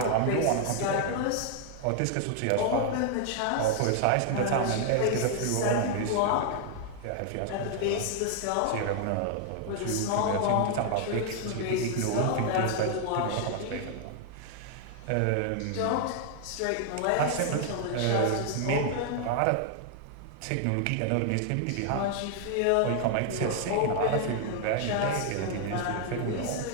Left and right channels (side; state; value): both; different; correlation 0.00